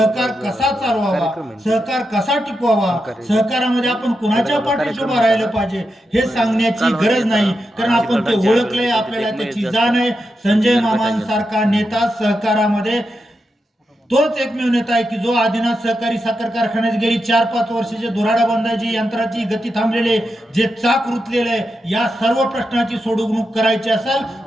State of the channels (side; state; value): both; normal; correlation 0.87